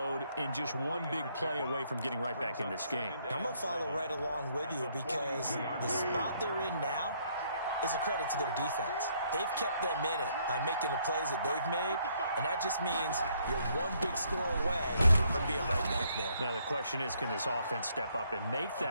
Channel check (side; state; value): both; inverted; correlation -0.69